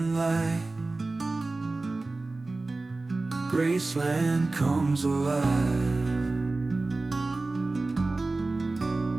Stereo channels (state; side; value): quieter; left; 3.3 dB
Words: light. Graceland comes alive.